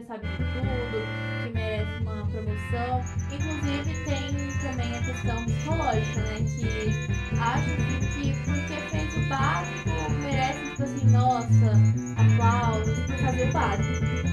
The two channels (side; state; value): both; identical; correlation 1.00